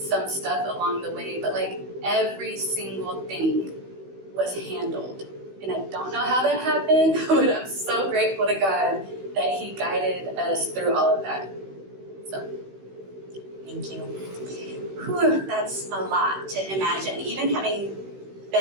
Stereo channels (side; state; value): left; late; 16 ms